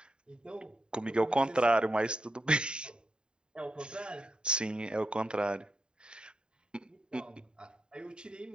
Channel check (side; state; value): left; late; 0.049 ms